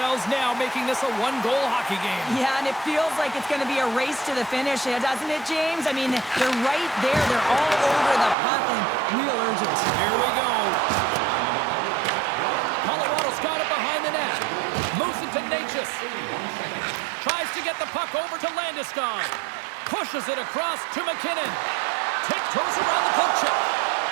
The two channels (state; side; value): drops out; left; at 8.3 s